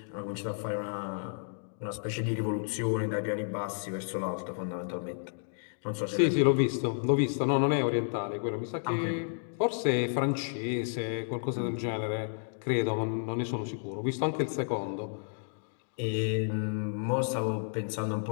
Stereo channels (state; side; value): silent; right; digital silence